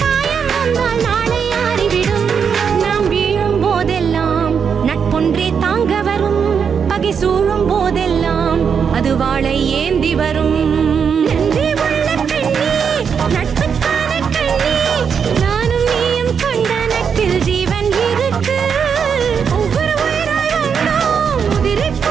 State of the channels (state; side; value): quieter; left; 6.8 dB